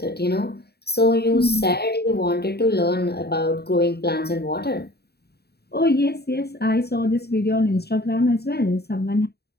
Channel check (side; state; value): right; late; 0.47 ms